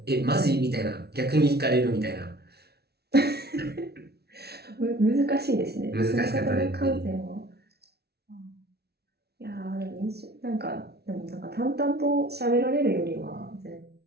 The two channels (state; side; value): late; left; 0.47 ms